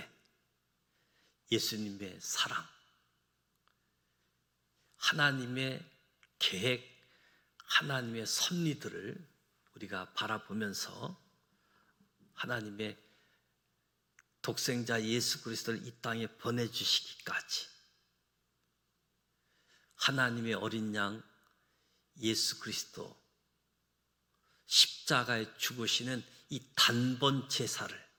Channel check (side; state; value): both; identical; correlation 1.00